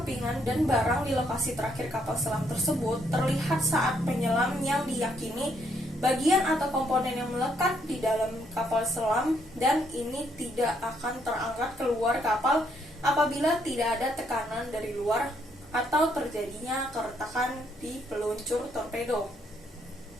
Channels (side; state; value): both; normal; correlation 0.72